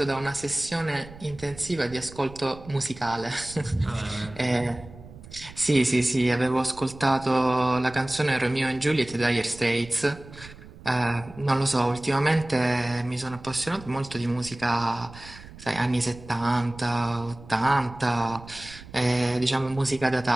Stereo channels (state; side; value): noise; right; rumble, 18 dB below the sound